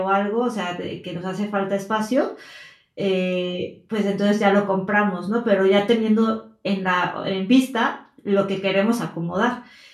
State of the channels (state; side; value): identical; both; correlation 1.00